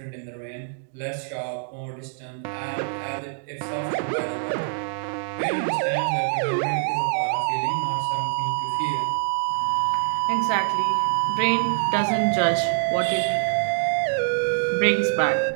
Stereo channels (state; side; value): silent; left; digital silence